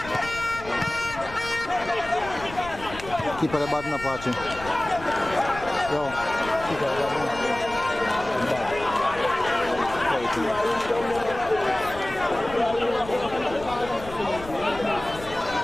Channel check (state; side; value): noise; left; rumble, 14 dB below the sound